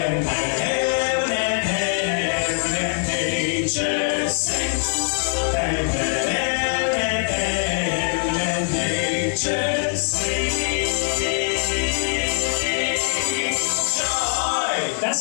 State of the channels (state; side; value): silent; right; 64 dB below the other